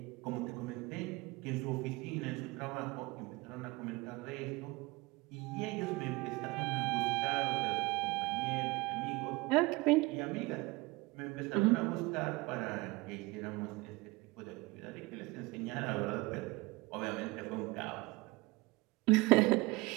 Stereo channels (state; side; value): quieter; left; 22.5 dB